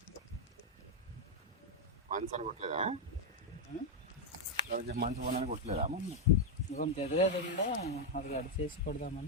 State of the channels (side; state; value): both; normal; correlation 0.01